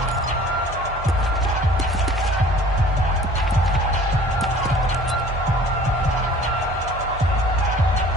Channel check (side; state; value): both; normal; correlation 0.48